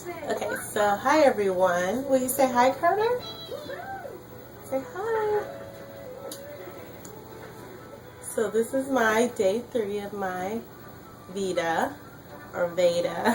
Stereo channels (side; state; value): both; identical; correlation 1.00